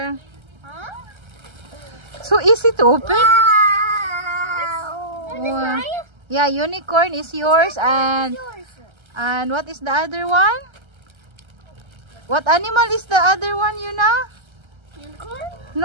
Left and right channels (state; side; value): late; left; 1.3 ms